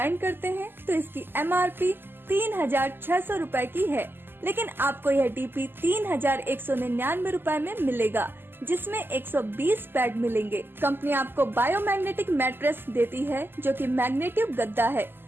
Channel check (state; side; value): late; left; 0.099 ms